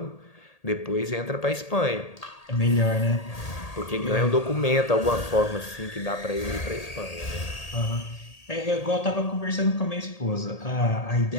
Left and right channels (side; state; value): right; late; 1.8 ms